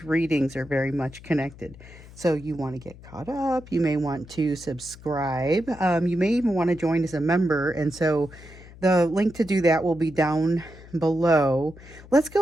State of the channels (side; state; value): left; noise; hum, 19 dB below the sound